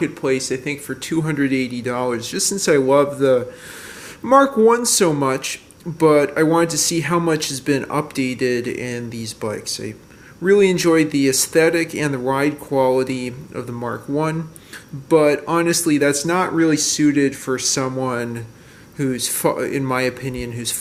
I think for $280, just since I love the Mark 1 so much, but I wanted to see how much has been updated in these bikes. I really enjoyed the aesthetic and the ride quality of the Mark 1, but honestly that's not really suited for someone who's, in my opinion, who's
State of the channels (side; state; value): both; identical; correlation 1.00